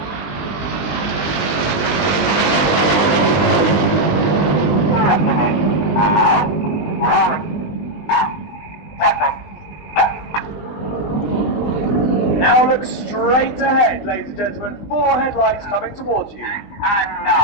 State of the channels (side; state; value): right; late; 20 ms